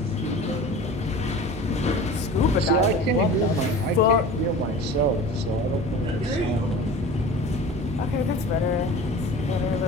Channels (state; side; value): normal; both; correlation 0.38